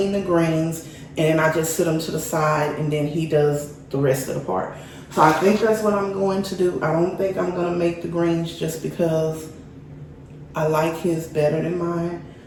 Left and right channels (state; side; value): identical; both; correlation 1.00